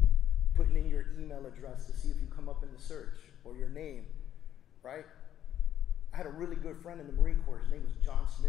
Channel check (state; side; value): quieter; right; 10.9 dB